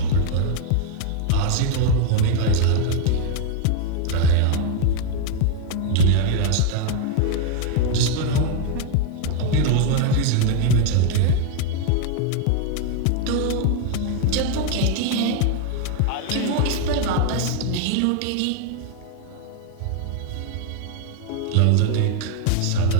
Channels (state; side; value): different; both; correlation 0.01